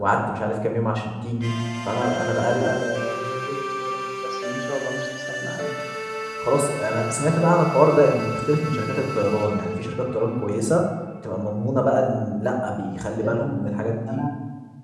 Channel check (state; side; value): identical; both; correlation 1.00